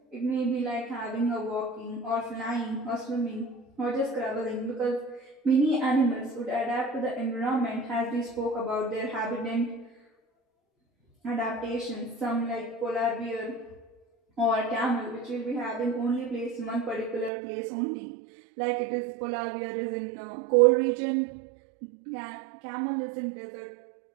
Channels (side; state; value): left; drops out; at 17.3 s